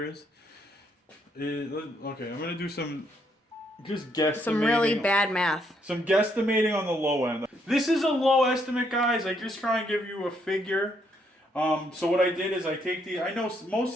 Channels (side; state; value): both; normal; correlation 0.73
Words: Okay, I'm gonna do some guesstimating. Some really bad math. Some guesstimating on the low end. This is a low estimate, guys. I just try and give you a figure. So what I did is I take the. I know